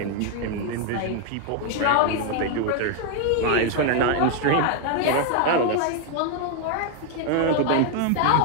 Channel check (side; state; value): both; different; correlation 0.00